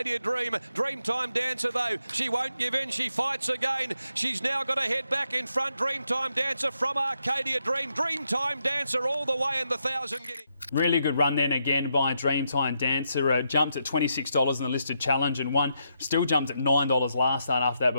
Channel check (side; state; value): both; inverted; correlation -0.81